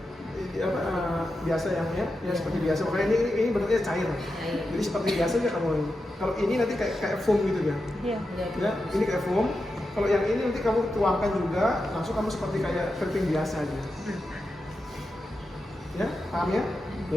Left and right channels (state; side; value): normal; both; correlation 0.89